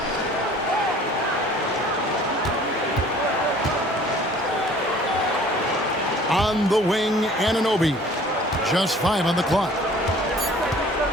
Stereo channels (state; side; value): normal; both; correlation 0.51